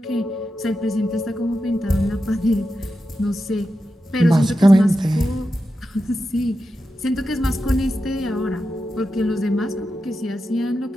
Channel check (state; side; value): normal; both; correlation 0.90